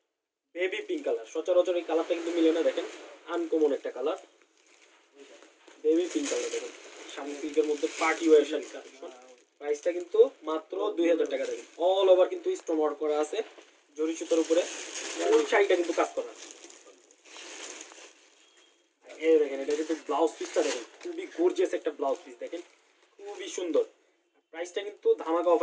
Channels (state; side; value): identical; both; correlation 1.00